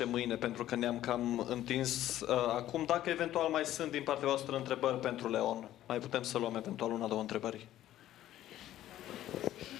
mâine pentru că ne-am cam întins acum. Dacă eventual mai sunt din partea voastră întrebări pentru Leon, mai putem să luăm eventual una, două întrebări.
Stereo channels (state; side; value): quieter; right; 13.2 dB